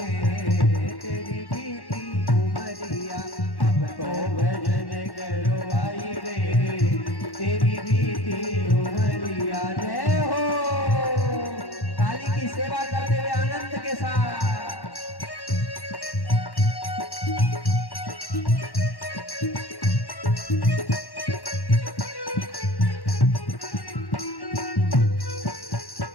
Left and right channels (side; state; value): right; late; 1.1 ms